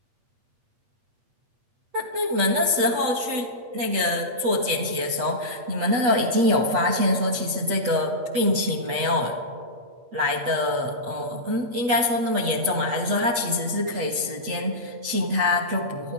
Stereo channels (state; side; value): late; left; 8.2 ms